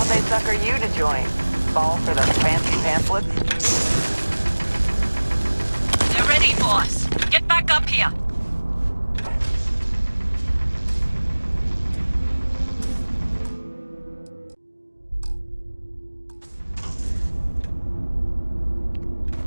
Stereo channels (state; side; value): inverted; both; correlation -1.00